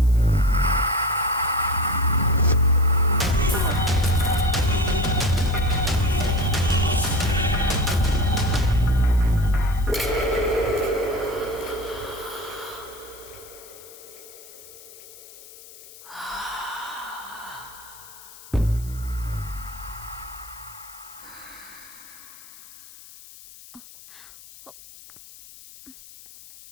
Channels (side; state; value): left; noise; hiss, 19 dB below the sound